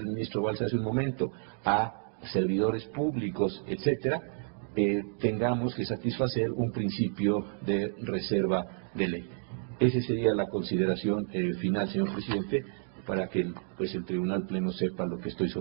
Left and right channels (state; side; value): silent; left; 57 dB below the other